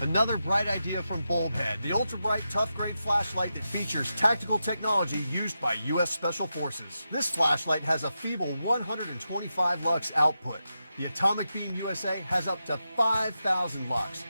Another bright idea from Bulbhead, the ultra-bright, tough-grade flashlight that features tactical technology used by U.S. Special Forces. This flashlight has a feeble 125 lux output. The Atomic Beam USA has up to 5,000 lux.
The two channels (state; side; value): inverted; both; correlation -0.89